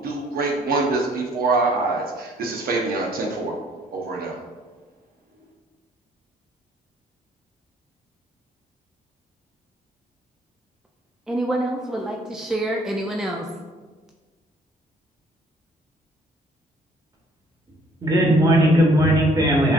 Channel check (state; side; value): normal; both; correlation 0.61